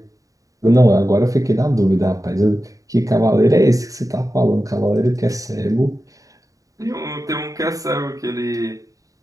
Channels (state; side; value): late; left; 0.16 ms